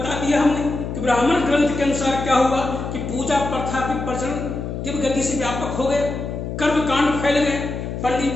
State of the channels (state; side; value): noise; left; hum, 5 dB below the sound